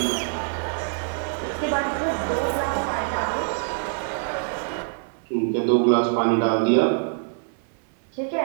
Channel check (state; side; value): silent; left; digital silence